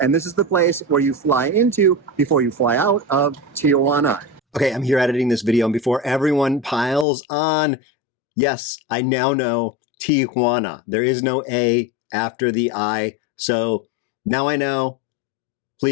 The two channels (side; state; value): right; drops out; at 7.1 s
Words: and this is the place where you fly into before you fly out of Tijuana. Okay, I'm here editing this video, and before everyone piles on, yes, I now know Tijuana. There is no A after the I, so now I know.